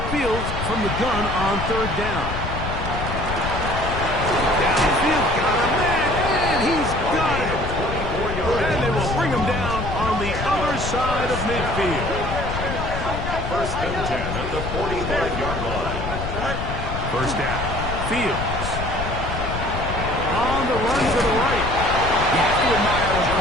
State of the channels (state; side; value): noise; left; rumble, 5 dB below the sound